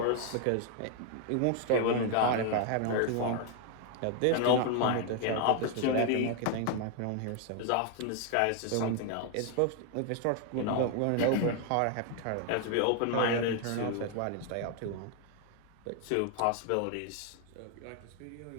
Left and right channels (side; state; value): both; different; correlation 0.00